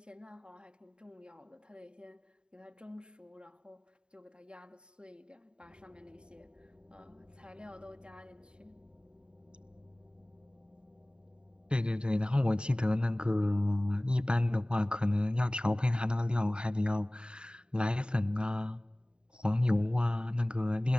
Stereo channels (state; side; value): late; left; 0.050 ms